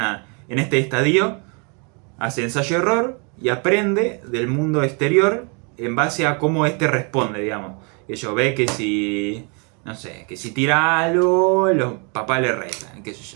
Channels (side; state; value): left; quieter; 34.9 dB